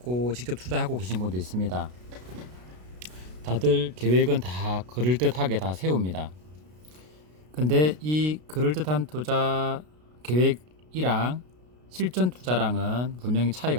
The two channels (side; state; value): left; late; 33 ms